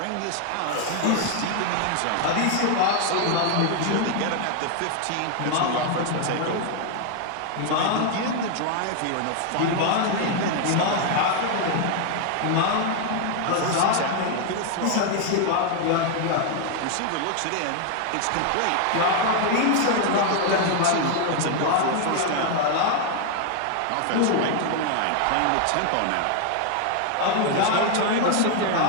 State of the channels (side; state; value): both; different; correlation 0.00